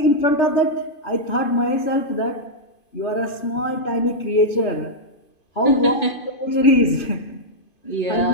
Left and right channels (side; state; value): right; late; 2.5 ms